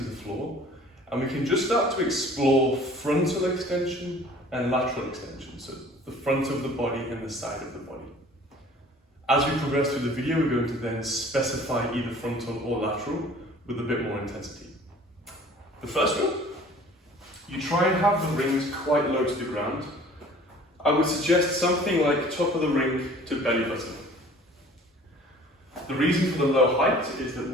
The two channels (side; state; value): both; normal; correlation 0.49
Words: the floor, and we can just start to explore frontal extension and lateral extension, so the front of the body and the side of the body. As we progress through the video, we're going to then specify either frontal or lateral with a bit more intensity. The first one, you try and have the rings quite low to the ground. I would suggest something like top of the ring to belly button. The reason for the low height is that